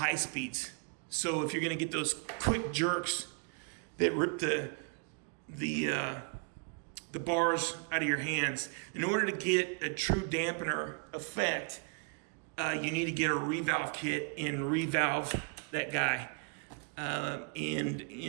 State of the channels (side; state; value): left; quieter; 38.9 dB